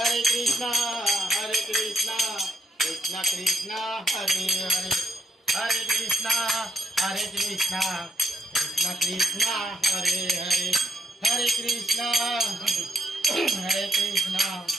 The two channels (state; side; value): normal; both; correlation 0.76